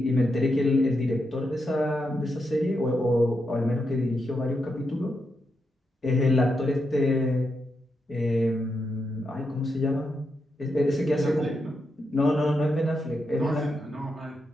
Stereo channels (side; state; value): both; normal; correlation 0.84